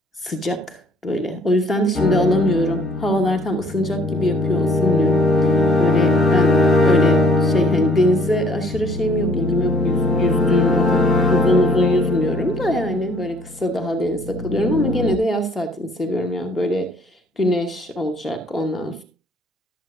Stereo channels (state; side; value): normal; both; correlation 0.59